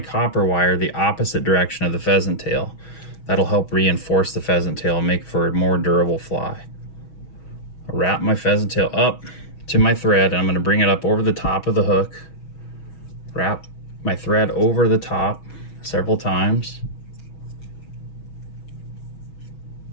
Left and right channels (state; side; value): late; right; 6.2 ms